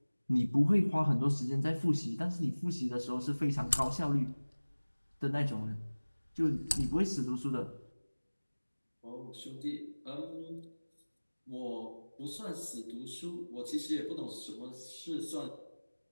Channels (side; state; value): both; inverted; correlation -1.00